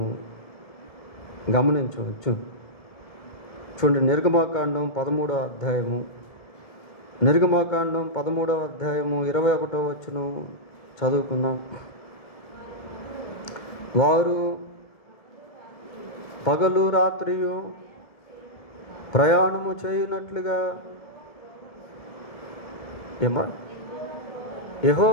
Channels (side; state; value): right; late; 1.7 ms